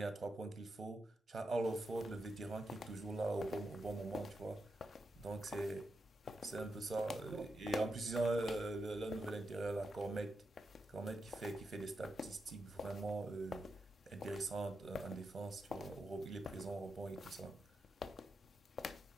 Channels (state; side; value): normal; both; correlation 0.86